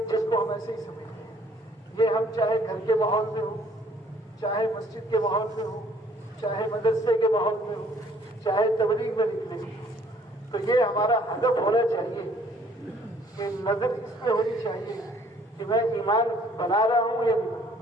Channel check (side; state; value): both; normal; correlation 0.60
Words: جس کو ہم ایسے ہی سمجھتے ہیں، یہ ہم چاہے گھر کے ماحول میں ہو، چاہے مسجد کے ماحول میں ہو، چاہے مدرسے کے ماحول میں ہو، چاہے تبلیغ میں نکلے ہو، تو یہ ہمارا ہدف ہونا چاہیے کہ نظر اس پہ ہونی چاہیے کہ میں ایمان بنا رہا ہوں یا نہیں،